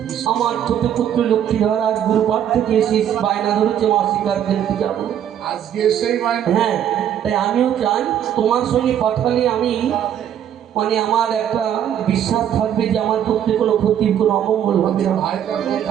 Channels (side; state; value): left; quieter; 9.9 dB